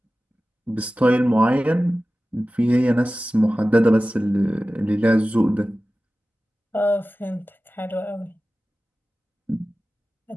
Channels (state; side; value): normal; both; correlation 0.96